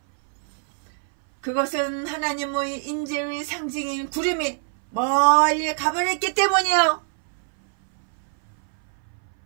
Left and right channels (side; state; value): left; silent; 62 dB below the other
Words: 그것은 하나님의 임재의 상징인 구름이 멀리 가버렸기 때문이요.